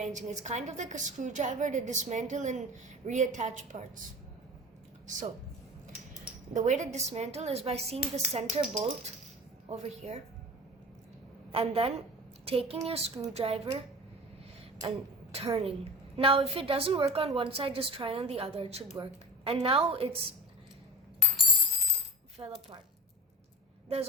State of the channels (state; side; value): normal; both; correlation 0.33